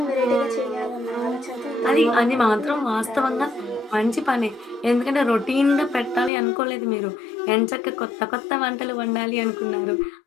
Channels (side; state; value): right; drops out; at 6.3 s